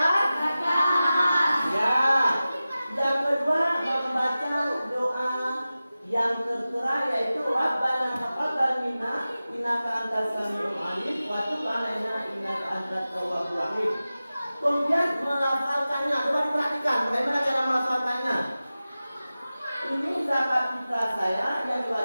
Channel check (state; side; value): inverted; both; correlation -0.95